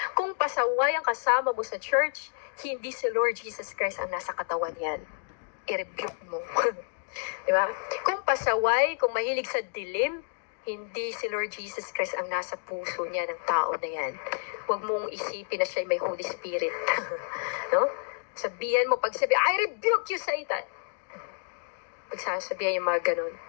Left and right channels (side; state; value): right; silent; digital silence